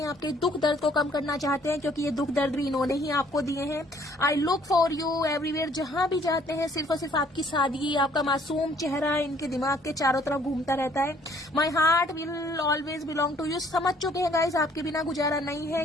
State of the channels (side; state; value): both; normal; correlation 0.61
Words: आपके दुख दर्द को कम करना चाहते हैं, क्योंकि ये दुख दर्द भी इन्होंने ही आपको दिए हैं। I look for you everywhere. जहां भी जाते हैं सिर्फ और सिर्फ आपकी सादगी, आपका मासूम चेहरा इनके दिमाग के चारों तरफ घूमता रहता है। My heart will always belong to you. समझ चुके हैं गाइज, आपके बिना गुजारा नहीं है,